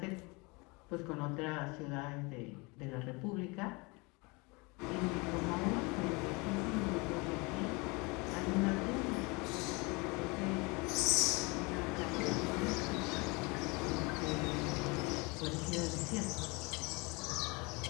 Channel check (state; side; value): quieter; right; 27.5 dB